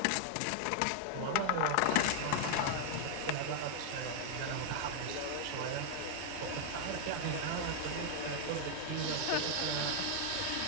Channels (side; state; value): both; different; correlation 0.00